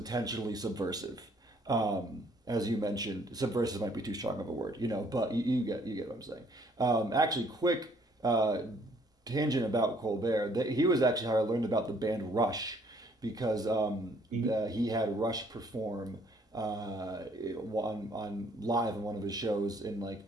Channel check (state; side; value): normal; both; correlation 0.63